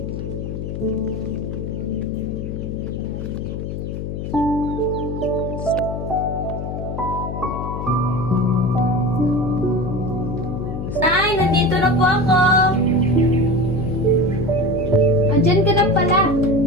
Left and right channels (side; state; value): left; noise; hum, 5 dB below the sound